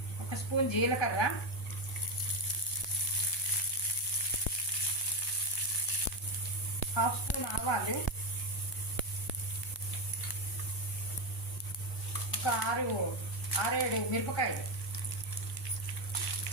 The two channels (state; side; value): normal; both; correlation 0.10